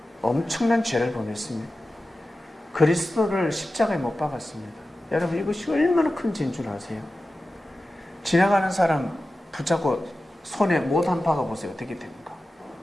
엄청난 죄를 범했습니다. 그리스도를 십자가에 못 박았습니다. 여러분, 이것이 얼마나 큰 죄인 줄 아세요? 지나가는 사람 붙잡고 손에 못 한 박아보세요. 어떻게 됩니까?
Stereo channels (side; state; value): both; normal; correlation 0.94